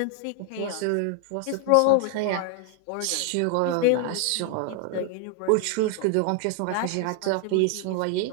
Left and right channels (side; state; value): both; different; correlation 0.00